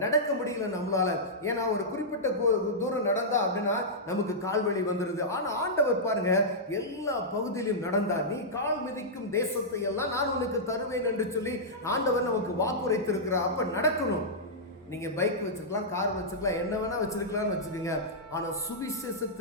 நடக்க முடியல நம்மளால. ஏன்னா ஒரு குறிப்பிட்ட தூரம் நடந்தா அப்படின்னா நமக்கு கால்வழி வந்துடுது. ஆனால் ஆண்டவர் பாருங்க, எல்லா பகுதியிலும் நடந்தார். நீ கால் மிதிக்கும் தேசத்தை எல்லாம் நான் உனக்கு தருவேன் என்று சொல்லி ஆண்டவர் நமக்கு வாக்குரைத்திருக்கிறார். அப்ப நடக்கணும். நீங்க பைக் வச்சிருக்கலாம், கார் வச்சிருக்கலாம், என்ன வேணா வச்சிருக்கலாம்னு வச்சுக்கோங்க. ஆனால்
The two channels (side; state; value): both; normal; correlation -0.11